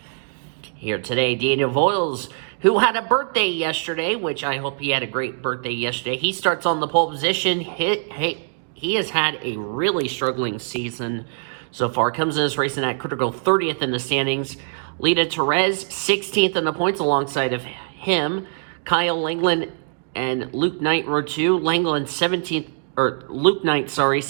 Here today, Daniel Voiles, who had a birthday yesterday, which I hope he had a great birthday yesterday. He starts on the pole position. He has had a really struggling season so far. Comes in this racing at critical 30th in the standings. Lita Perez, 16th in the points alongside of him. Kyle Langland and Luke Knight row 2. Langland 17th, or Luke Knight,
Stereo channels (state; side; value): silent; left; digital silence